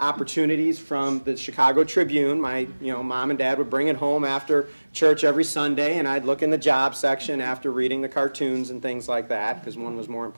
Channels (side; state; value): both; inverted; correlation -1.00